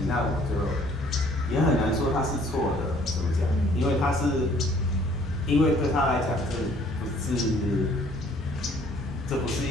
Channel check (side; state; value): both; normal; correlation 0.59